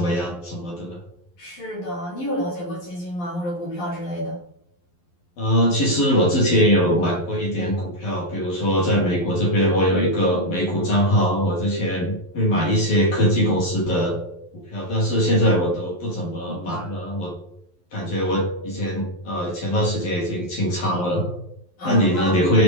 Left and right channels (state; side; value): late; right; 11 ms